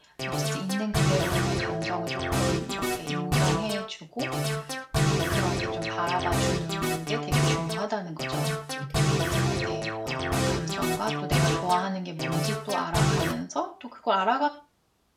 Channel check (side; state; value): both; identical; correlation 1.00